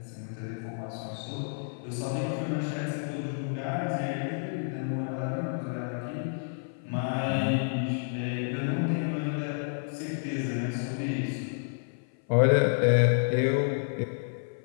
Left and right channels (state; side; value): silent; right; 56 dB below the other